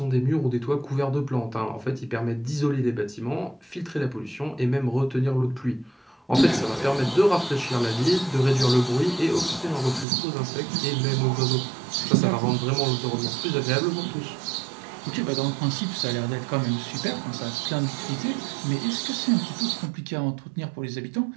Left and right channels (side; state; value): left; drops out; at 10.1 s